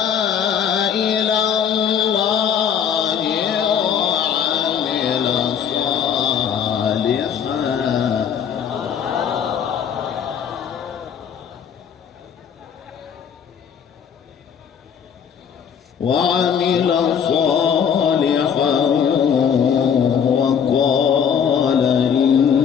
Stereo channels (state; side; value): quieter; right; 7.8 dB